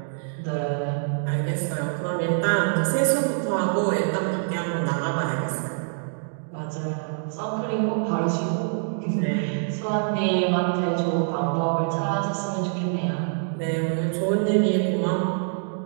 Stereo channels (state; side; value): silent; left; digital silence